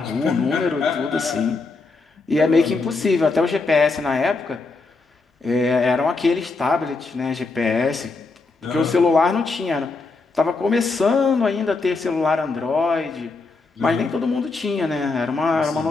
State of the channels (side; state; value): right; quieter; 3.9 dB